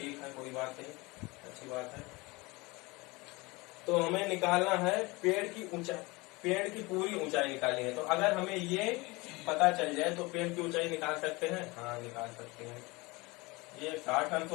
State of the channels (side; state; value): right; quieter; 24.1 dB